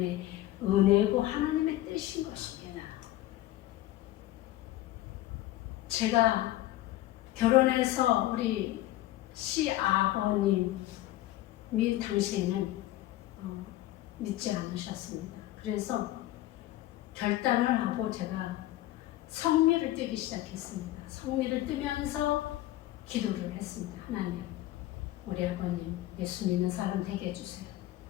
은혜고 하나님의 뜻인 것입니다. 제가 결혼해서 우리 시아버님이 당시에는 믿지 않으셨습니다. 그래서 결단을 하고 제가 성미를 뜨기 시작했습니다. 성미를 뜨면서 기도를 했습니다. 하나님, 우리 아버님 예수 믿는 사람 되게 해주세요.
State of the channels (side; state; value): right; quieter; 15.5 dB